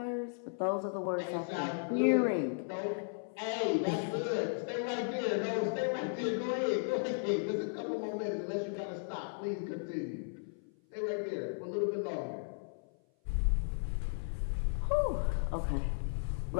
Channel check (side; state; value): right; silent; 54 dB below the other